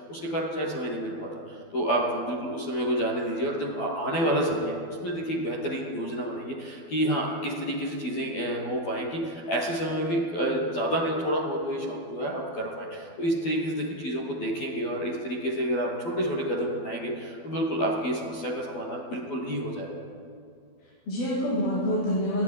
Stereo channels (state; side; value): late; right; 12 ms